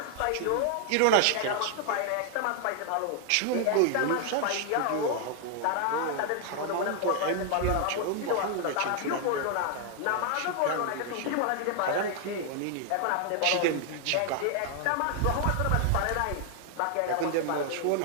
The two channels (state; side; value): different; both; correlation 0.00